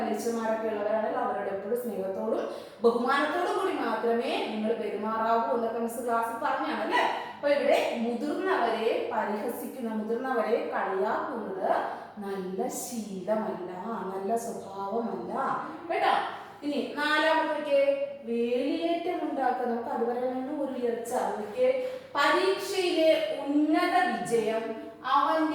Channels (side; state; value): both; identical; correlation 1.00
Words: ഉള്ളവരാണെങ്കിൽ അവരോട് എപ്പോഴും സ്നേഹത്തോടും ബഹുമാനത്തോടും കൂടി മാത്രമേ നിങ്ങൾ പെരുമാറാവൂ എന്നൊക്കെ മിസ് ക്ലാസ്സിൽ പറഞ്ഞാണ് അല്ലെ. അപ്പൊ ഇവിടെ മുതിർന്നവരെ പരിഹസിക്കുന്ന, മുതിർന്നവരെ കളിയാക്കുന്നത് നല്ല ശീലമല്ല, നല്ല സ്വഭാവമല്ല കേട്ടോ. ഇനി നാലാമത്തെ വേലിയേറ്റം ഉണ്ടാക്കുക. നമുക്ക് അതുവരെ ഒരു ഉയർച്ച. പരീക്ഷയിലെ ഉന്നത വിജയം